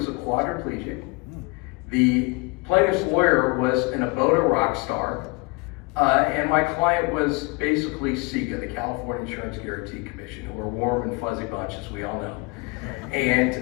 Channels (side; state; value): right; quieter; 27.7 dB